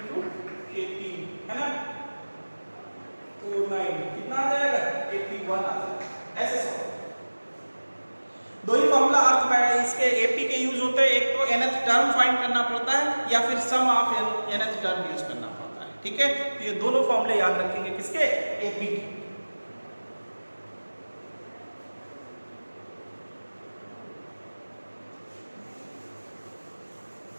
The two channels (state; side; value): inverted; both; correlation -1.00